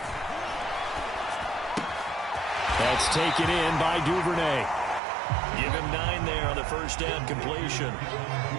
That's taken in by Duvernay. Give him 9 there on the first down completion.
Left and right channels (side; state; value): left; drops out; at 5.0 s